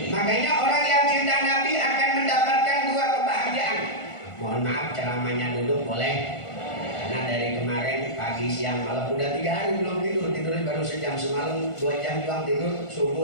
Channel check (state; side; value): late; right; 1.5 ms